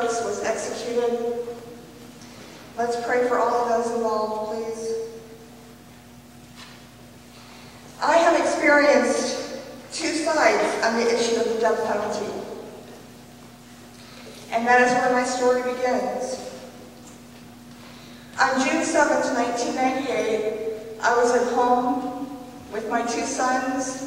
was executed. Let's pray for all of those involved, please. I have experienced two sides on the issue of the death penalty. And that is where my story begins. On June 7th, 1998, I was at home with my two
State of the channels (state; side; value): identical; both; correlation 1.00